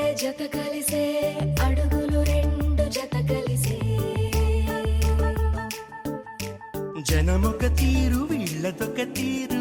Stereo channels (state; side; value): identical; both; correlation 1.00